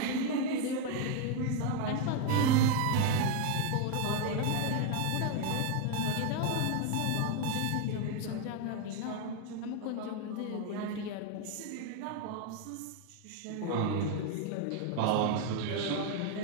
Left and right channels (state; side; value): different; both; correlation 0.01